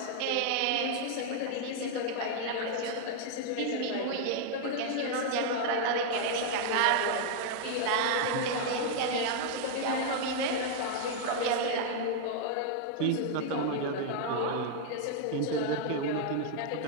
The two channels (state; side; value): different; both; correlation 0.00